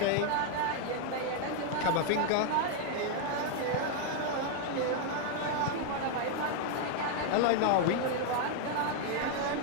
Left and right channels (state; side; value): different; both; correlation 0.00